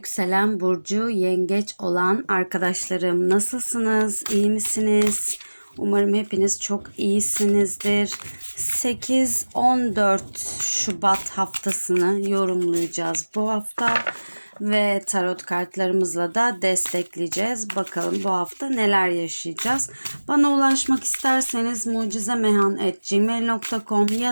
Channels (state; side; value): inverted; both; correlation -1.00